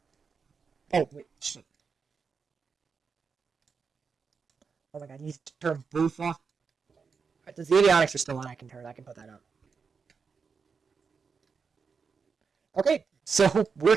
Oh, wait, shit. Oh my god, I need to turn both off. Right, the avionics are still on, I can put that up. Okay, so we're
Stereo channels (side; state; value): left; quieter; 5.5 dB